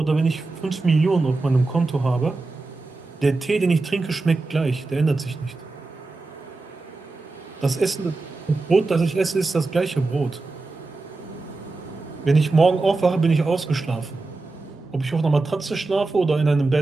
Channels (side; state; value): left; quieter; 3.5 dB